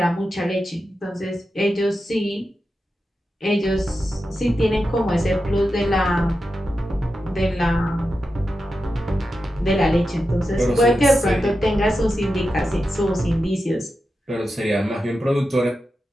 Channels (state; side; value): normal; both; correlation 0.90